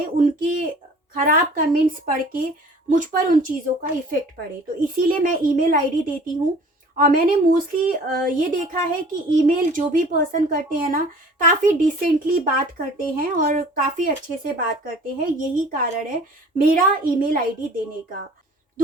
उनके ख़राब कमेंट्स पढ़ के मुझ पर उन चीज़ों का इफ़ेक्ट पड़े। तो इसीलिए मैं ईमेल आईडी देती हूँ। और मैंने मोस्टली ये देखा है कि ईमेल जो भी पर्सन करते हैं ना, काफ़ी डिसेंटली बात करते हैं और काफ़ी अच्छे से बात करते हैं। यही कारण है मेरा ईमेल आईडी देने का।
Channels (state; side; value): normal; both; correlation 0.49